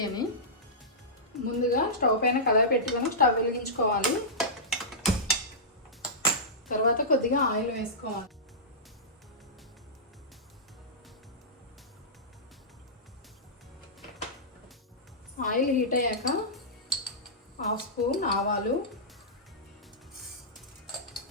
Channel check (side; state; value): both; normal; correlation -0.15